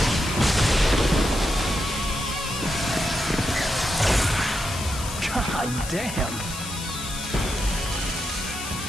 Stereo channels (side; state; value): left; noise; hiss, 9 dB below the sound